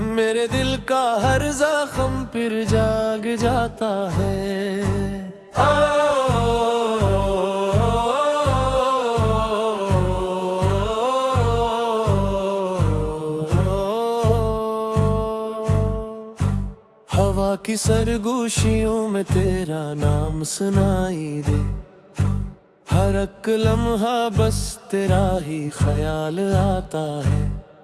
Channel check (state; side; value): identical; both; correlation 1.00